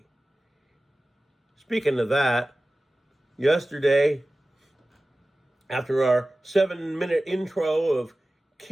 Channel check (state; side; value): normal; both; correlation 0.96